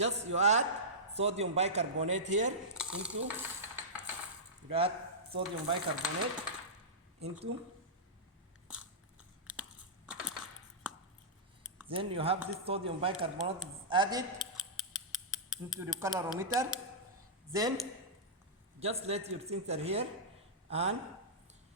you add sodium bicarbonate here into, then you have this sodium bicarbonate added into the calorimeter. Then just let your sensor here and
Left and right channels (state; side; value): normal; both; correlation -0.14